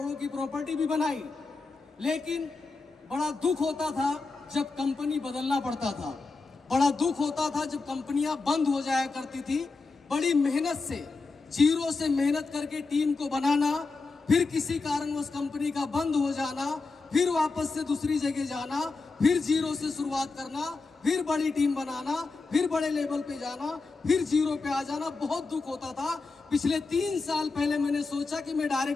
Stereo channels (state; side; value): quieter; right; 3.9 dB